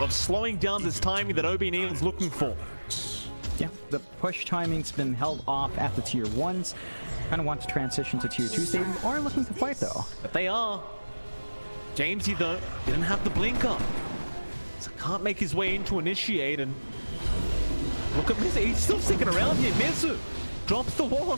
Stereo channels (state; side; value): inverted; both; correlation -1.00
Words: slowing down this timing that ob.neon is looking for. Yeah, the push timing's been held off at the tier 1s. Kind of want to transition to tier 2s. They are looking to fight though. But they are. Jamesy though didn't have the blink up, so can't make his way in to initiate. And look at Mizu, he's still sticking around here. Mizu drops the wall